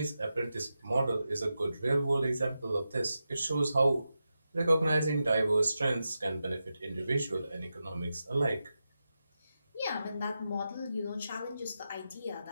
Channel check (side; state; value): both; inverted; correlation -0.90